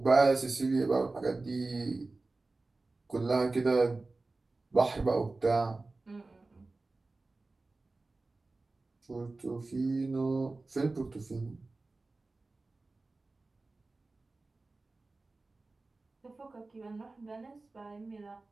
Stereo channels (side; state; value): left; quieter; 3.4 dB